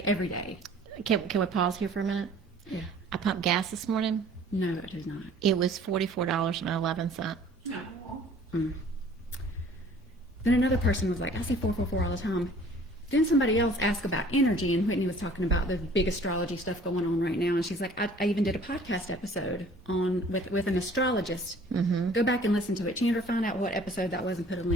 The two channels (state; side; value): normal; both; correlation 0.52